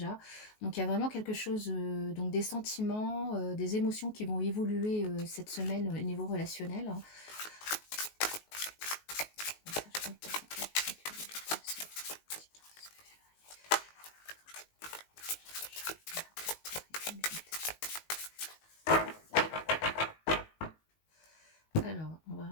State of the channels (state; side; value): late; right; 19 ms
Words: Donc il y a vraiment quelque chose, donc des sentiments, des émotions qui vont évoluer cette semaine au niveau relationnel. Hein. Alors, on va